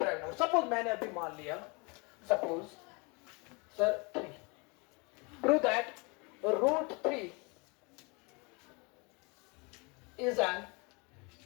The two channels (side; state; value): right; quieter; 30.1 dB